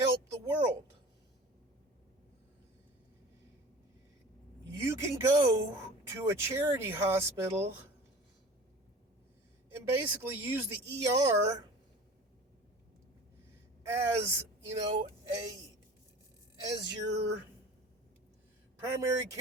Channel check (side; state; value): both; normal; correlation 0.40